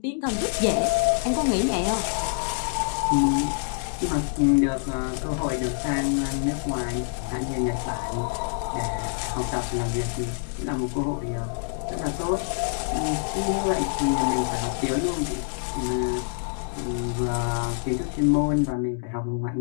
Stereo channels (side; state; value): right; silent; digital silence